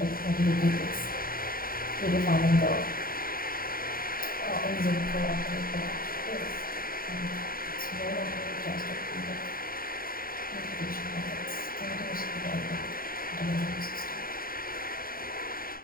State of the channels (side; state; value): right; late; 0.42 ms